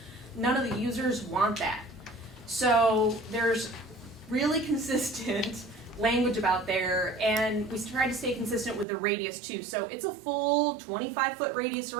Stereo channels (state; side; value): drops out; left; at 8.8 s